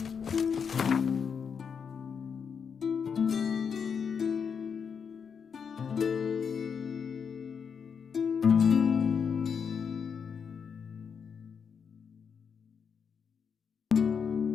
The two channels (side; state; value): right; quieter; 6.6 dB